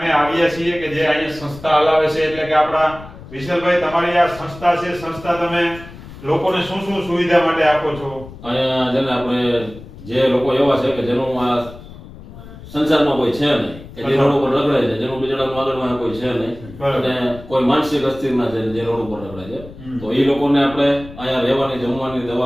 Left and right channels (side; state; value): left; noise; rumble, 16 dB below the sound